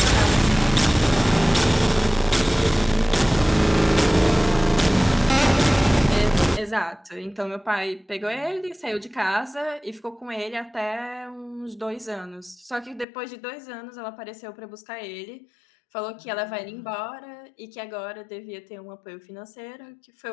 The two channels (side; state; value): right; drops out; at 13.1 s